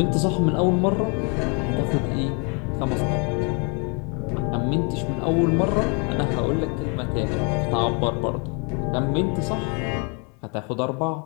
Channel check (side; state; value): right; quieter; 35.0 dB